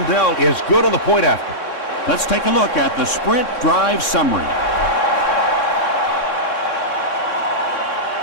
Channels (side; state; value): right; late; 3.6 ms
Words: is good on the point after. Let's take a look at the sprint drive summary.